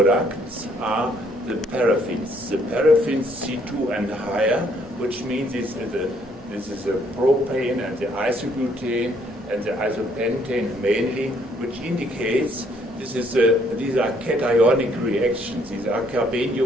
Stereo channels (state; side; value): normal; both; correlation 0.66